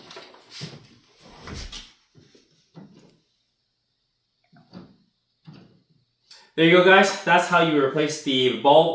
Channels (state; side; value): identical; both; correlation 1.00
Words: There you go, guys. That's how you replace the